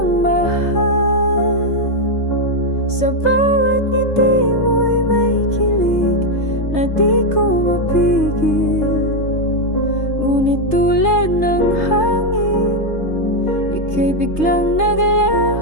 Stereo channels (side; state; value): right; late; 3.3 ms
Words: mahal. Sa bawat ngiti mo'y may kilig na di ko mapigil. Ngunit tulad ng hangin, ika'y biglang